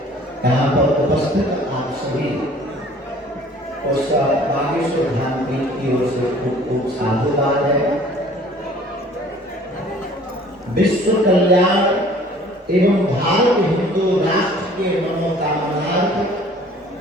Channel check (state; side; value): normal; both; correlation 0.52